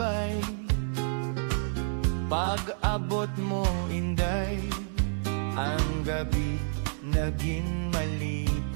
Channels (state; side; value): silent; left; 58 dB below the other